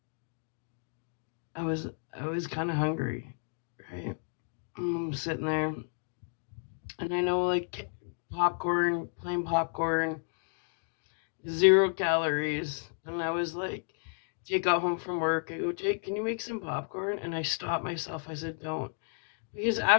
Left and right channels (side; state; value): right; silent; digital silence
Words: I was kind of hungry, right? I'm sitting there, and I know like popcorn, plain popcorn, 0 calories, and I was like, Jake got home from work. I go, Jake, can you make some popcorn? And I stopped myself. I said, don't. Because